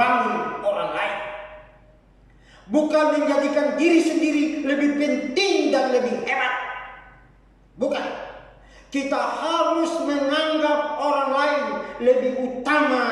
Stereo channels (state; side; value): identical; both; correlation 1.00